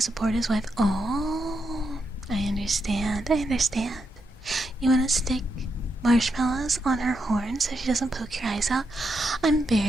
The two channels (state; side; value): normal; both; correlation 0.83